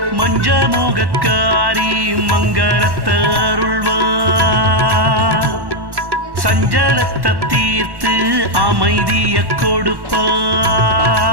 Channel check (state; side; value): late; left; 1.1 ms